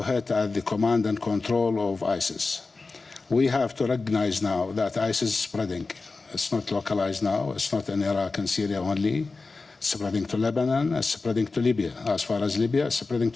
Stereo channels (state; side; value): quieter; right; 3.9 dB